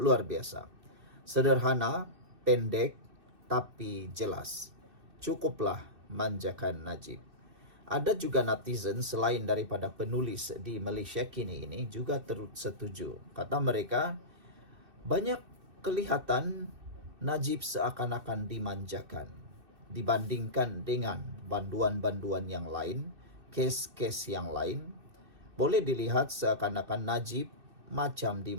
biasa. Sederhana, pendek, tapi jelas. Cukuplah manjakan Najib. Ada juga netizen selain daripada penulis di Malaysia kini ini juga turut setuju. Kata mereka, banyak kelihatan Najib seakan-akan dimanjakan dibandingkan dengan banduan-banduan yang lain, kes-kes yang lain. Boleh dilihat seakan-akan Najib macam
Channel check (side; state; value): left; late; 2.6 ms